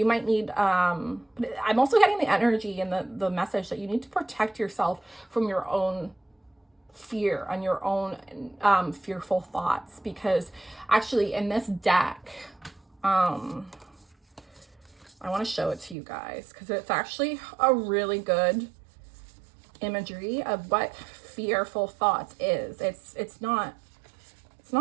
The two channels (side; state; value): left; drops out; at 16.0 s